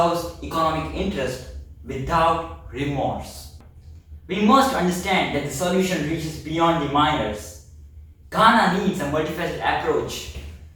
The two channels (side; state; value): both; identical; correlation 1.00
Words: economic interest without remorse? We must understand that the solution reaches beyond the miners. Ghana needs a multifaceted approach.